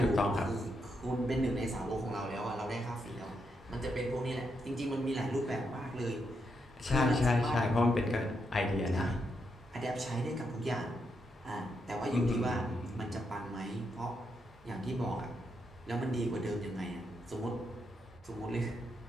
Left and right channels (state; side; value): normal; both; correlation 0.81